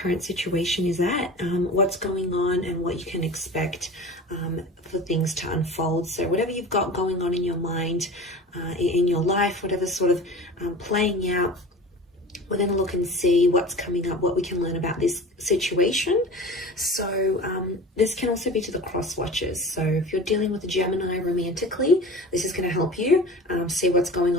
situation is at, what's going on and what you can expect for things to unfold. So whatever you've got going on in your mind, in your life, whatever sort of playing out, we're going to look and see what's coming up, what we can learn about this situation. So this can also be to the cross watchers. So if you're dealing with a Gemini romantically, this is going to help you see what's going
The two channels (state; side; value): normal; both; correlation 0.37